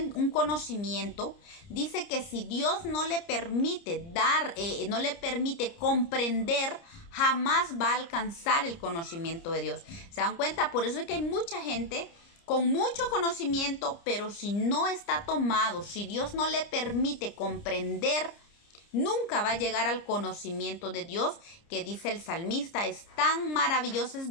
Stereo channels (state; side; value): late; right; 30 ms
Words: conocimiento, dice que si Dios no le permite no le permite comprender, jamás va a alcanzar el conocimiento de Dios. ¿Se dan cuenta? Por eso es que hay mucha gente con mucho conocimiento, pero si no está tomado, si Dios no le permite comprender, nunca va a llegar al conocimiento de Dios, que dice el salmista: es tan maravilloso,